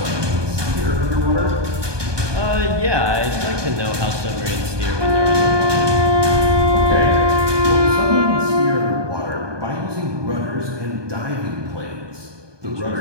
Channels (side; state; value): left; late; 1.2 ms